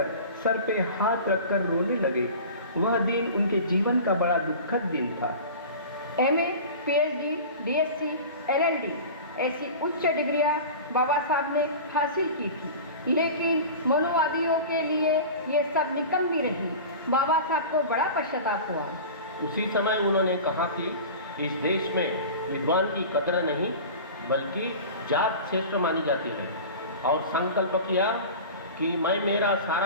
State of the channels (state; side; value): inverted; both; correlation -0.35